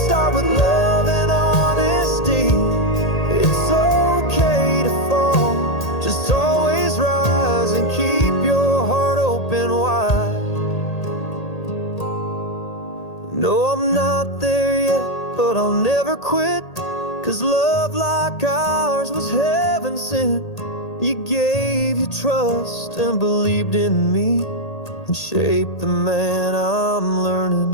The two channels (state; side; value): late; right; 1.8 ms